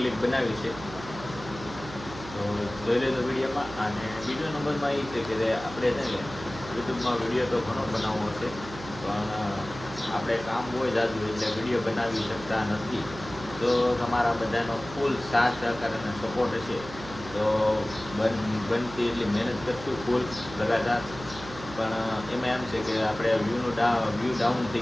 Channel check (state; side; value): noise; right; hum, 14 dB below the sound